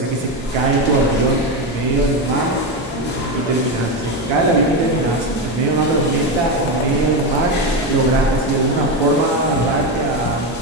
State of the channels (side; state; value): both; normal; correlation 0.13